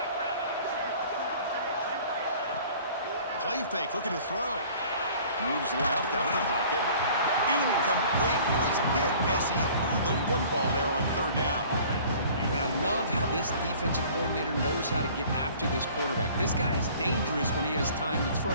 Play fake, looking to throw. Moves left out of the pocket. Incomplete. He was hit as he threw the football there on third down. And I love how this defensive coordinator knows how to get after this quarterback. This guy is dangerous when he has time to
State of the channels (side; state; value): both; inverted; correlation -0.50